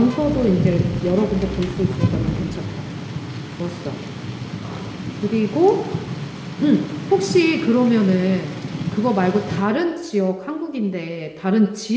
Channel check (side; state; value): both; identical; correlation 1.00